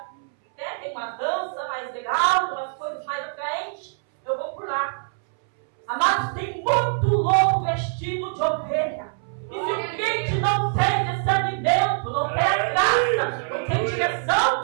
tem uma dança mais legal, umas coisas mais atraentes, eu vou por lá. Amados, tem muito louco vestido de ovelha. E se o crente não tem discernimento, não tem a graça, não tem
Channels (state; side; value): silent; left; 63 dB below the other